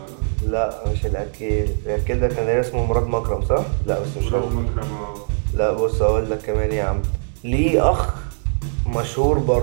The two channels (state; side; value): silent; left; digital silence